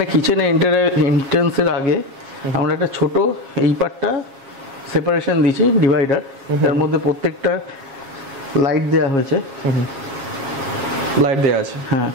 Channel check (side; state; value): left; late; 7.3 ms